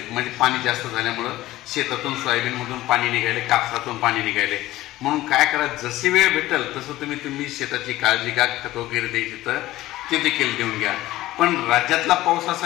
म्हणजे पाणी जास्त झाल्यामुळं शेतातून सोयाबीनमधून पाणी निघाले, कापसातून पाणी निघाले. म्हणून काय करा, जशी वेळ भेटेल तसं तुम्ही शेताची काळजी घ्या, खत वगैरे द्यायची तर ते देखील देऊन घ्या. पण राज्यातला पाऊस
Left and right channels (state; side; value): quieter; right; 16.3 dB